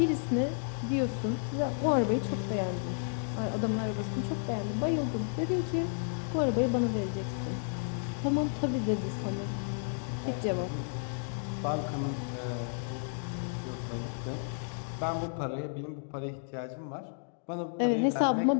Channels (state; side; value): silent; right; digital silence